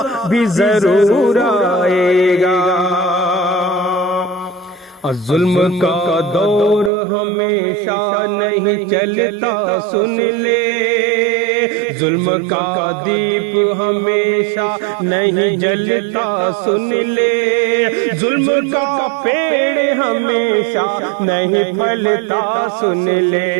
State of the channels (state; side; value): drops out; left; at 6.9 s